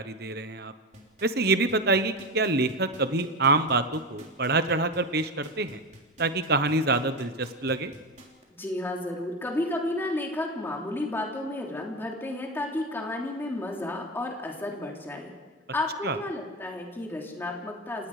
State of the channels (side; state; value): both; normal; correlation 0.19